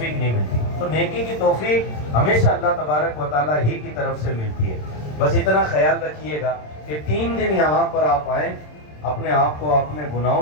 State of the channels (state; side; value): late; right; 27 ms